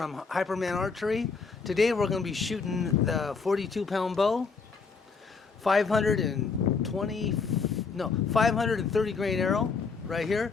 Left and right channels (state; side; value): quieter; right; 4.9 dB